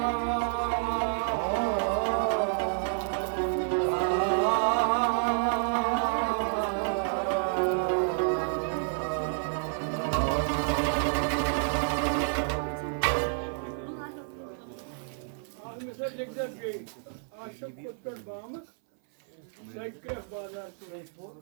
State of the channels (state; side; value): silent; left; 58 dB below the other